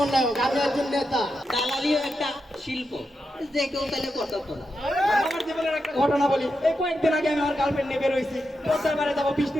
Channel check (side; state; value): both; normal; correlation 0.87